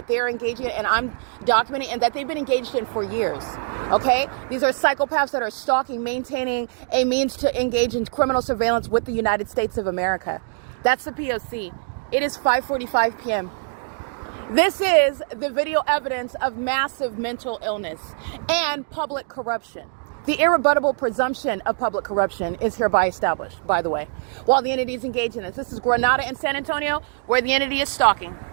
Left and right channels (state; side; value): silent; left; 63 dB below the other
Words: they're engaging in, and I'm documenting, and that they've been engaged in for years. Okay? These are psychopaths that are stalking, maintaining a means to engage in criminal surveillance with the United States of America. That's the P.O.C. It is 5:45 p.m. This is the video evidence of massive mental illness and public corruption. The irrebuttable presumption of public corruption is hereby established, by the way, while the entity is engaged in this. This is Grenada and San Antonio, where the entity is stalking.